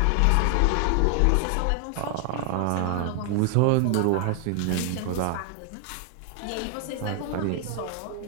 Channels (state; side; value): different; both; correlation 0.00